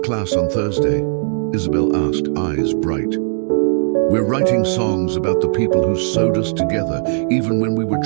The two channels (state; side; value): silent; left; 56 dB below the other